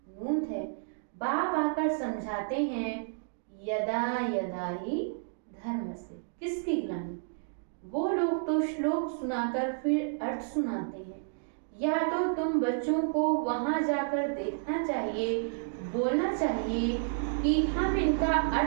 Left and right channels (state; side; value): silent; left; digital silence